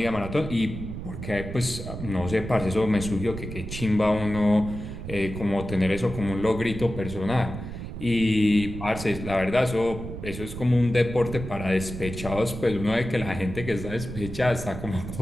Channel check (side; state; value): right; noise; rumble, 8 dB below the sound